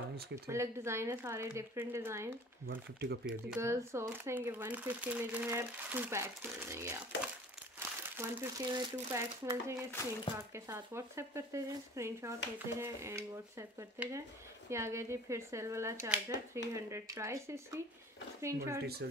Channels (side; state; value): both; normal; correlation 0.46